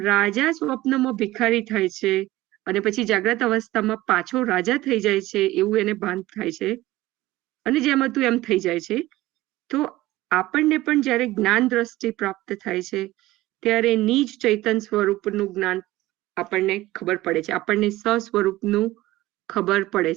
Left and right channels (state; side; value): quieter; left; 17.4 dB